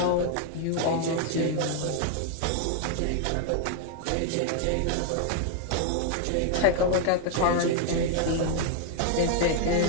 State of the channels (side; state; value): both; different; correlation 0.00